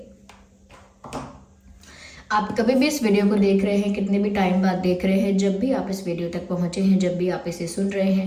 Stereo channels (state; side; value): identical; both; correlation 1.00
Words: आप कभी भी इस वीडियो को देख रहे हैं, कितने भी टाइम बाद देख रहे हैं, जब भी आप इस वीडियो तक पहुंचे हैं, जब भी आप इसे सुन रहे